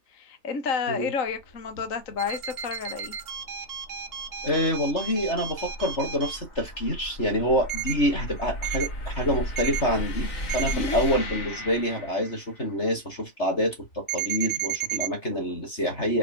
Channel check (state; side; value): late; right; 3.3 ms